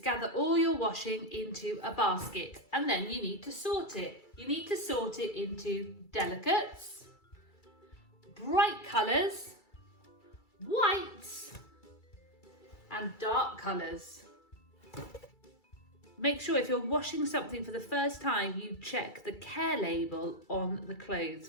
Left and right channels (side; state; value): right; late; 2.3 ms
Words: all your washing into a basket, and then you need to sort it. You need to sort it into delicates, bright colours, whites and dark colours. Make sure if you're washing something for the first time, you check the care label on the clothes,